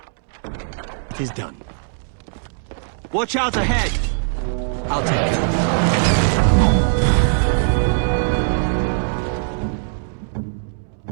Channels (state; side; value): silent; left; digital silence